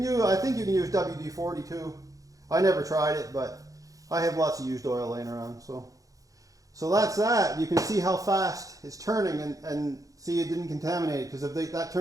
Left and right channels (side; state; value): left; late; 0.17 ms